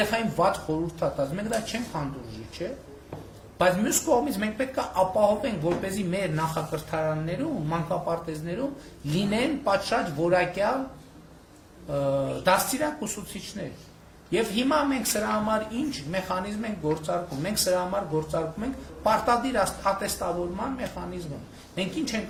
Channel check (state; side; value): identical; both; correlation 1.00